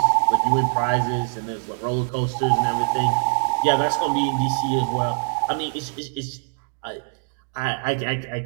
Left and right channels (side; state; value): left; silent; digital silence